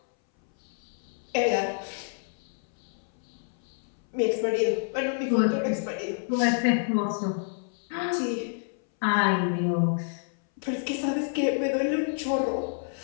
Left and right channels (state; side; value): silent; right; 59 dB below the other